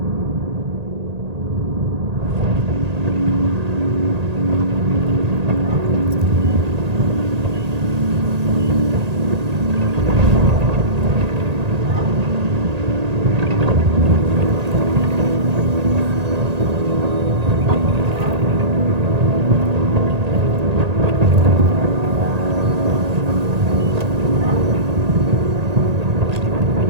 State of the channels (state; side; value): late; left; 1.8 ms